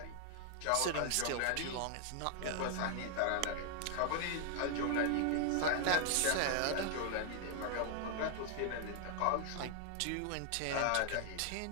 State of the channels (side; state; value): both; different; correlation 0.00